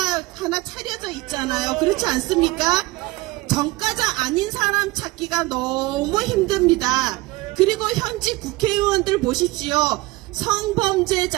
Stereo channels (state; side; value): quieter; left; 20.9 dB